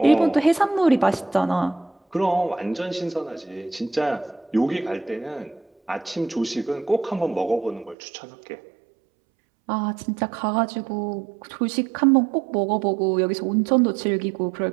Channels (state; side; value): drops out; left; at 8.0 s